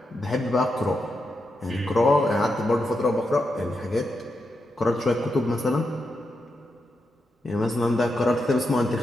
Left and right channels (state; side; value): normal; both; correlation 0.85